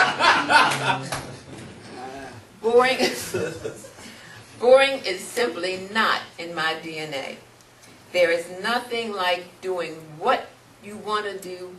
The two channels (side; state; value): both; identical; correlation 1.00